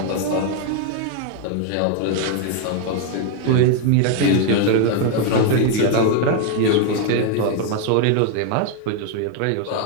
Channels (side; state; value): both; different; correlation 0.01